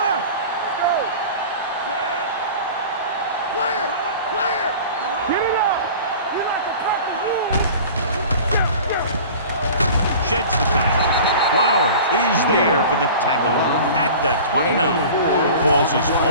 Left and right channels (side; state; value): both; inverted; correlation -0.40